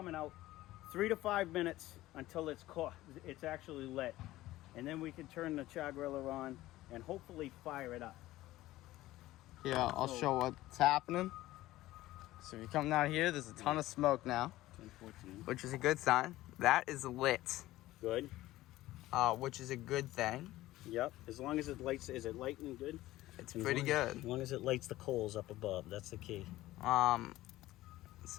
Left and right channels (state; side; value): quieter; right; 16.4 dB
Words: out, 3 to 5 minutes until it's actually lit. And then we can turn the Char-Griller on and hopefully fire it up. Yeah, I'll show what's happening. So if you come down here, there's a ton of smoke now, 10-14. which is a good sign. That is lit, Good. which is a good thing. Yep. As long as it lights, is it lighting good? It's pretty good. As long as it lights the coals up above, that's the key.